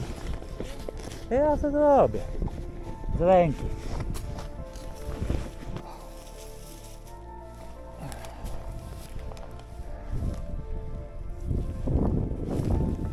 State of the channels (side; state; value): both; identical; correlation 1.00